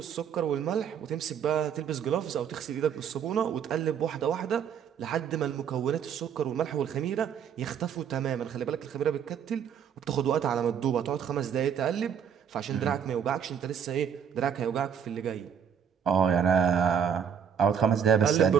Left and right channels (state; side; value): quieter; left; 8.0 dB